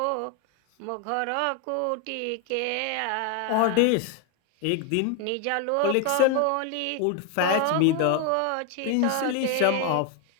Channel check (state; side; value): different; both; correlation 0.01